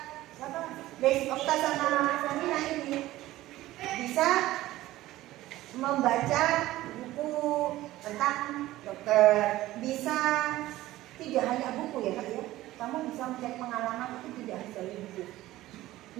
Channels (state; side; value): quieter; left; 16.2 dB